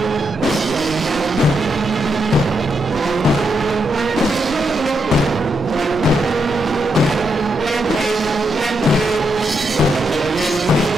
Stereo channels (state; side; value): normal; both; correlation 0.81